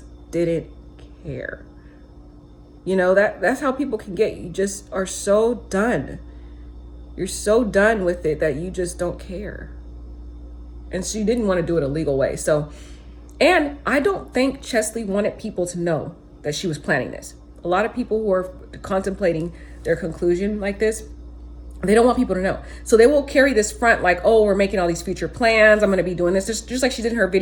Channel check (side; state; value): both; identical; correlation 1.00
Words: didn't care. That's how people can get. You just are so done. You're so done with it that you just don't care. And she didn't want to do it a legal way. So, and I don't think Cheslie wanted people to know that she was planning this. A lot of people who are contemplating their conclusion like this, they don't want people to know. So they will carry this front like, oh, we're making all these future plans. I'm going to be doing this. Just like she did in her